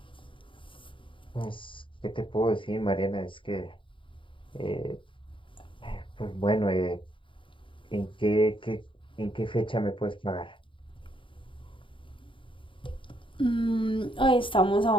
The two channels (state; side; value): late; right; 0.25 ms